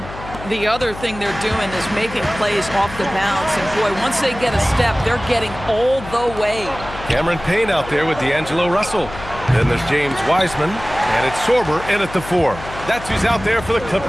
The other thing they're doing is making plays off the bounce. And, boy, once they get a step, they're getting all the way. Cameron Payne out there with D'Angelo Russell. Then there's James Wiseman, and it's Sorber in at the 4. That's who's out there for the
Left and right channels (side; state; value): left; noise; hum, 13 dB below the sound